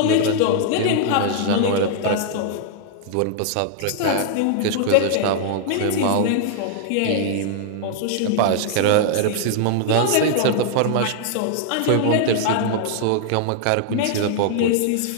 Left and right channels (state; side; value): different; both; correlation -0.01